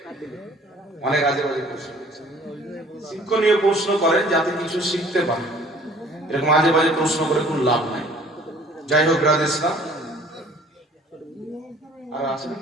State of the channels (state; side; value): normal; both; correlation 0.53